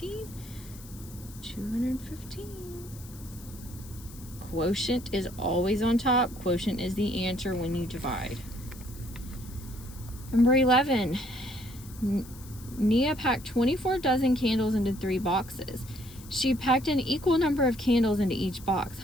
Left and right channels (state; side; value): noise; left; hiss, 19 dB below the sound